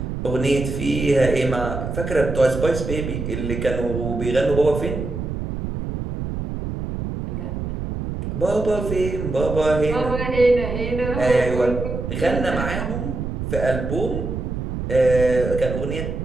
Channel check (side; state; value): right; noise; rumble, 4 dB below the sound